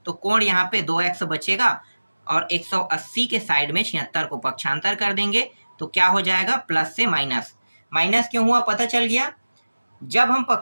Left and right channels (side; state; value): both; inverted; correlation -1.00